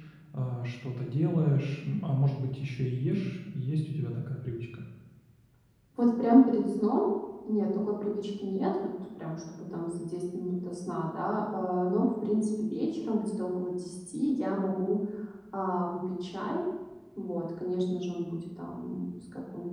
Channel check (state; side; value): identical; both; correlation 1.00